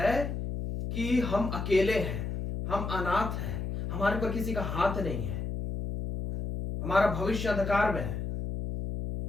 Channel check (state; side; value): noise; left; hum, 4 dB below the sound